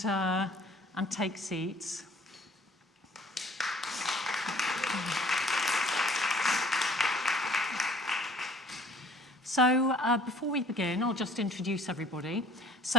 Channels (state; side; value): normal; both; correlation 0.53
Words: take seats? So, before we begin, I'll just introduce everybody.